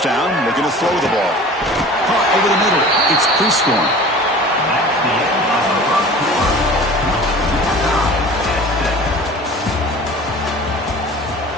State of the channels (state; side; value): normal; both; correlation 0.41